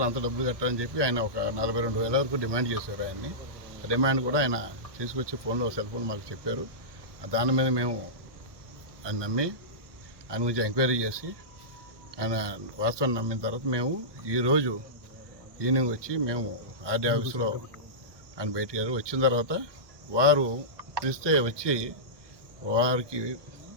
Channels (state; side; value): late; left; 1.2 ms